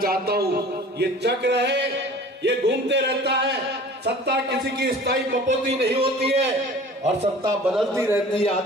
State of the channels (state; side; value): normal; both; correlation 0.44